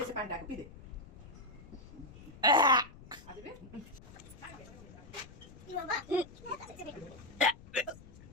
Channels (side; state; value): left; noise; rumble, 18 dB below the sound